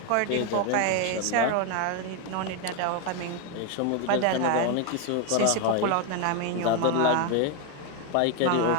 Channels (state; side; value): different; both; correlation 0.01